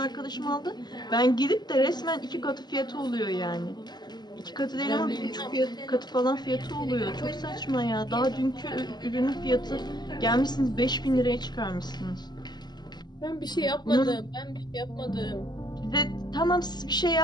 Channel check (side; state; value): right; late; 0.21 ms